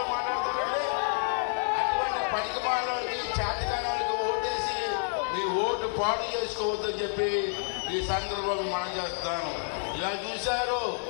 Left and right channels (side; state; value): right; silent; 58 dB below the other